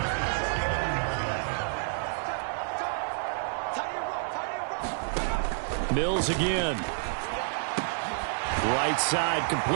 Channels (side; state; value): left; silent; digital silence